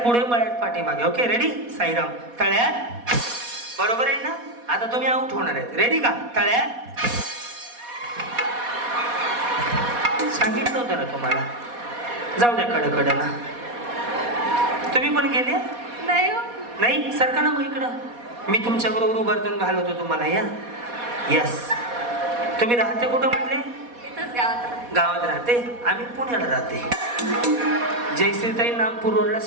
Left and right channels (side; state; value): left; late; 4.2 ms